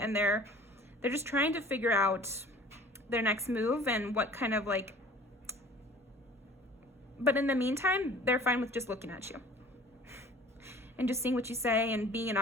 they're just trying to figure out their next move and what kind of like, but in the meantime, they're fine with just looking at you and just seeing what you say and being an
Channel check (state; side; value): normal; both; correlation 0.47